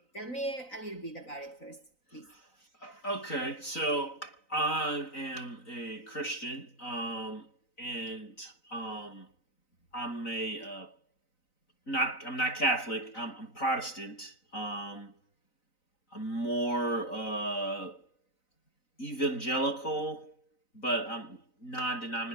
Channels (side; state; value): right; late; 3.9 ms